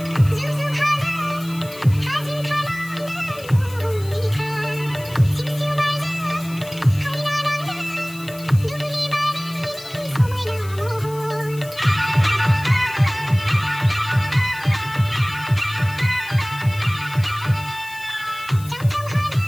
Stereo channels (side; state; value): left; noise; hiss, 18 dB below the sound